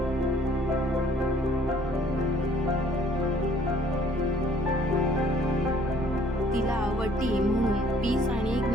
तिला वटी म्हणून पीस आणि एक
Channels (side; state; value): both; normal; correlation 0.58